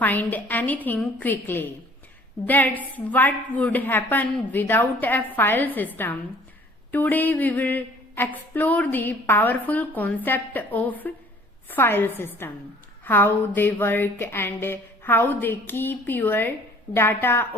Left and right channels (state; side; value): normal; both; correlation 0.54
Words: anything quickly. That's what would happen without a file system. Today we will explore the powerful concept of file system, how they work and how they keep your data